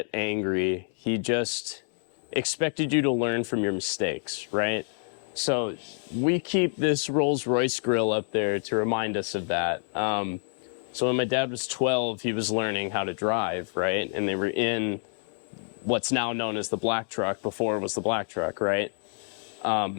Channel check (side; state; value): right; silent; 58 dB below the other